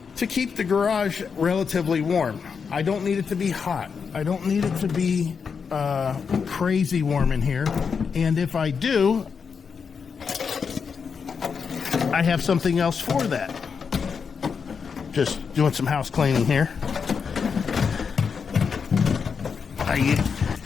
to keep the garage relatively warm. I don't need it to be hot. I don't need it to be crazy warm in here. And if I do, I have something else for that. Just doing some house cleaning here.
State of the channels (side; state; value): right; quieter; 6.0 dB